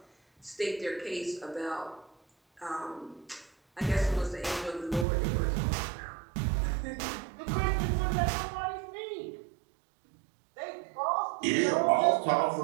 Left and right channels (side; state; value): left; drops out; at 5.1 s